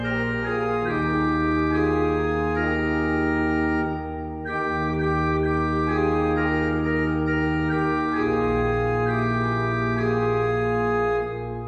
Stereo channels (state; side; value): identical; both; correlation 1.00